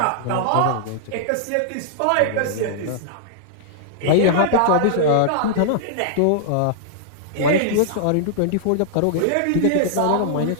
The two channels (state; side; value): different; both; correlation -0.01